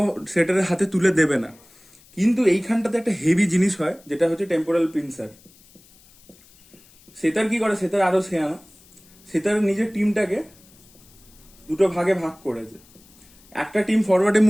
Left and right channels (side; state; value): left; noise; hiss, 27 dB below the sound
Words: সেটারের হাতে তুলে দেবে না। কিন্তু এইখানটাতে একটা হেভি জিনিস হয়, যেটা হচ্ছে টেম্পোরাল পিনসার। সেতার কি করে, সেতার আরো শেয়ানা, সেতার নিজের টিমটাকে দুটো ভাগে ভাগ করেছে। একটা টিম ফরওয়ার্ডে